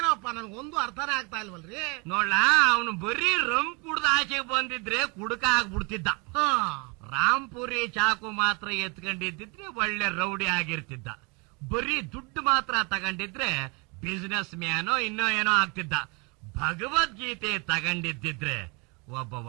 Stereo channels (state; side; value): quieter; left; 30.4 dB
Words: ನನ್ಗೊಂದು ಅರ್ಥನೇ ಆಗ್ತಾ ಇಲ್ವಲ್ರಿ. ನೋಡ್ಲ, ಅವನು ಬರೀ ರಮ್ ಕುಡ್ದ ಆಚೆಗೆ ಬಂದಿದ್ರೆ ಕುಡುಕ ಆಗ್ಬಿಡ್ತಿದ್ದ. ರಾಂಪುರಿ ಚಾಕು ಮಾತ್ರ ಎತ್ಕೊಂಡಿದ್ದಿದ್ರೆ ಒಳ್ಳೆ ರೌಡಿ ಆಗಿರ್ತಿದ್ದ. ಬರೀ ದುಡ್ಡು ಮಾತ್ರ ತಗೊಂಡಿದ್ರೆ ಬಿಸಿನೆಸ್ ಮ್ಯಾನೋ ಇನ್ನೋ ಏನೋ ಆಗ್ತಿದ್ದ. ಭಗವದ್ಗೀತೆ ತಗೊಂಡಿದ್ದಿದ್ರೆ ಒಬ್ಬ